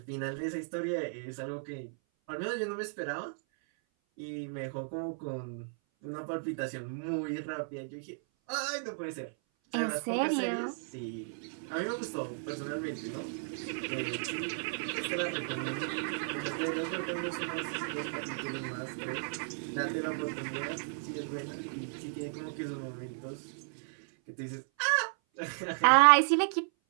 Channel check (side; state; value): left; silent; 55 dB below the other